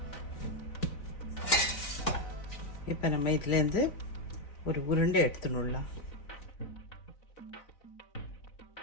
இப்போ நம்ம இதுலேருந்து ஒரு உருண்டை எடுத்துன்னு விடலாம்.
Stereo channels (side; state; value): right; late; 4.0 ms